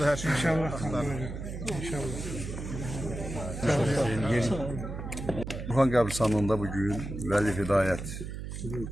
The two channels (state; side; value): noise; right; hum, 7 dB below the sound